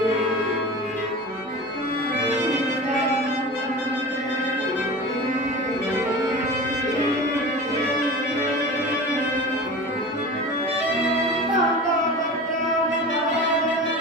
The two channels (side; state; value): both; normal; correlation 0.33